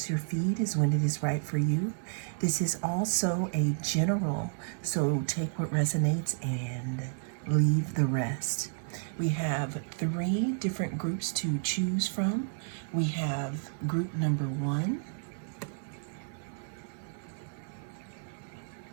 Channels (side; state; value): left; silent; 57 dB below the other